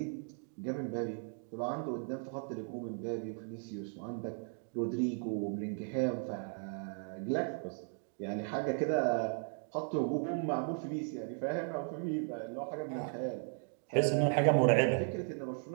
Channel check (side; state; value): left; silent; 54 dB below the other